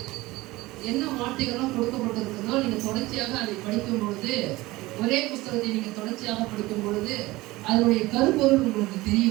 என்ன வார்த்தைகளும் கொடுக்கப்பட்டிருக்கிறதோ நீங்க தொடர்ச்சியாக அதை படிக்கும் பொழுது, ஒரே புஸ்தகத்தை நீங்க தொடர்ச்சியாக படிக்கும் பொழுது அதனுடைய கருப்பொருள் உங்களுக்கு தெரிய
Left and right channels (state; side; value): quieter; left; 19.6 dB